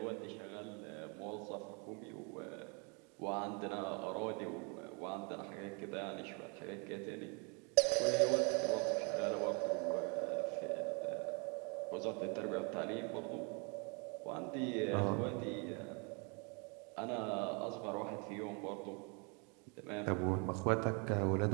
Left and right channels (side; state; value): left; quieter; 33.9 dB